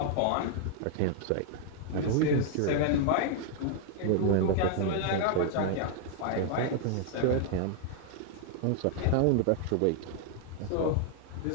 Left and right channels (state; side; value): different; both; correlation 0.00